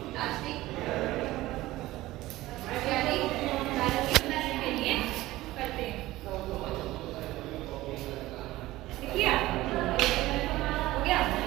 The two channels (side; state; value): left; quieter; 17.3 dB